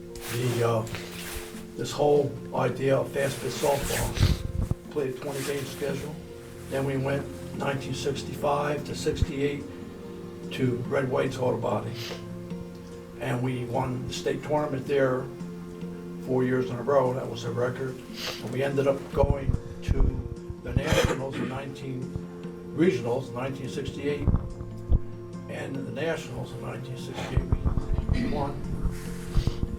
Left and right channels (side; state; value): both; identical; correlation 1.00